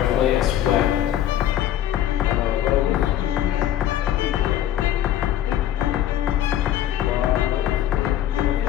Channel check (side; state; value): right; quieter; 11.7 dB